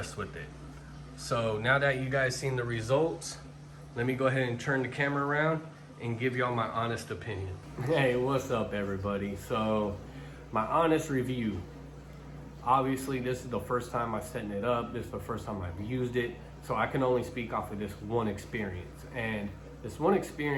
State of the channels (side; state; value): both; identical; correlation 1.00